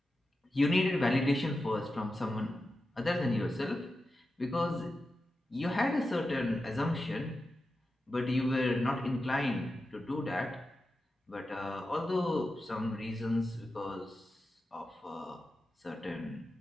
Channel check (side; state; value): both; normal; correlation 0.91